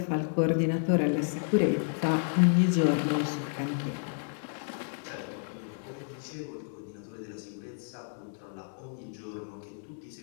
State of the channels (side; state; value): right; silent; digital silence